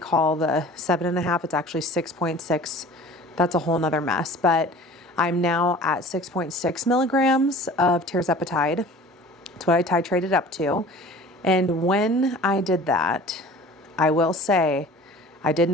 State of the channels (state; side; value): normal; both; correlation 0.44